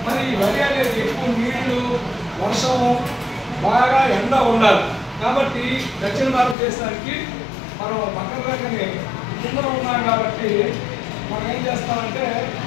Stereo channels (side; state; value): right; drops out; at 6.6 s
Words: మరి ఈ వరి అనేది ఎక్కువ నీళ్లు, వర్షము, బాగా ఎండ ఉండాలి. కాబట్టి దక్షిణ భారతదేశానికి మనం పక్కన రకనే కింద ఉన్నాం కాబట్టి మనం ఏం చేస్తామంటే